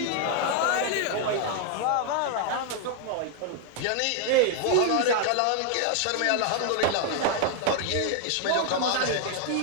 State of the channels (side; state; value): both; different; correlation 0.00